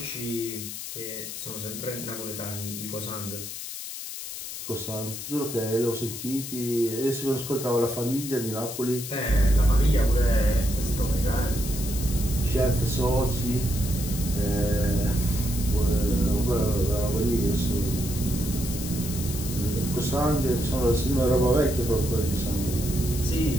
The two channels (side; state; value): left; noise; hiss, 8 dB below the sound